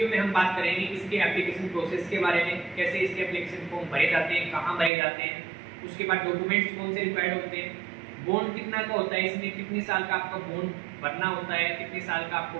में हम बात करेंगे इसके एप्लीकेशन प्रोसेस के बारे में, कैसे इसके एप्लीकेशन फॉर्म भरे जाते हैं, कहाँ भरे जाते हैं, उसके बाद डॉक्यूमेंट्स कौन से रिक्वायर्ड होते हैं, बॉन्ड कितना का होता है, इसमें कितने साल का आपका बॉन्ड भरना होता है, कितने साल का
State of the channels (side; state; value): left; drops out; at 4.9 s